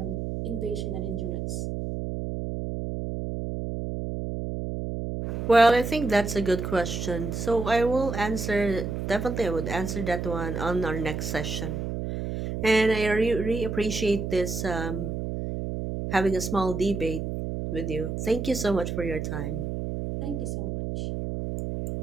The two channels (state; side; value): noise; right; hum, 4 dB below the sound